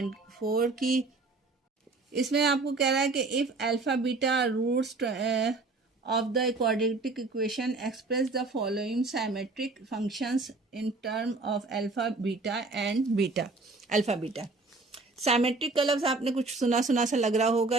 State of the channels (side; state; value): left; quieter; 3.5 dB